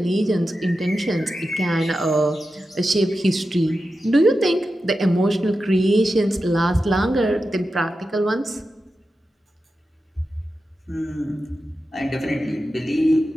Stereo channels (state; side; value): normal; both; correlation 0.91